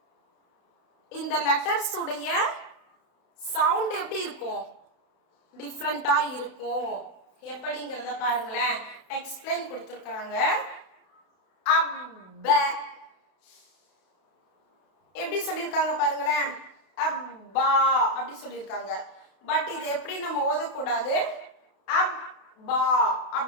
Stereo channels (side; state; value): right; late; 32 ms